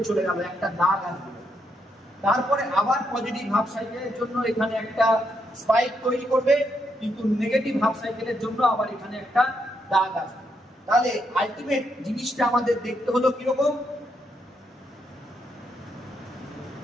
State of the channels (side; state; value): both; normal; correlation 0.78